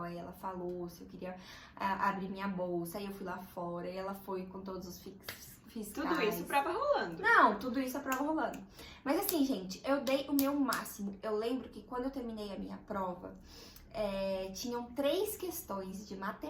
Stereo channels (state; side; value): identical; both; correlation 1.00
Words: Aí ela falou se eu queria abrir minha bolsa. Aí eu fui lá fora e ela foi com todos os fiscais. Tudo isso, prova rolando. Não, tudo isso a prova rolando. Mas assim, gente, eu dei o meu máximo. Eu lembro que quando eu terminei a minha prova, tinham 3 questões de